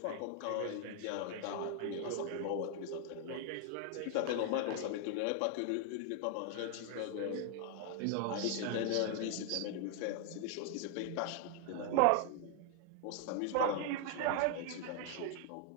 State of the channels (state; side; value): different; both; correlation 0.00